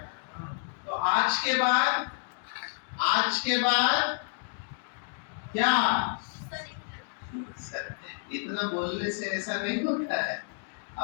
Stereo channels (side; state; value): right; silent; digital silence